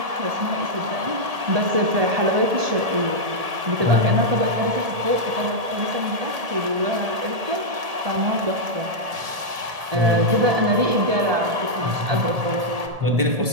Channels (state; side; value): late; left; 1.7 ms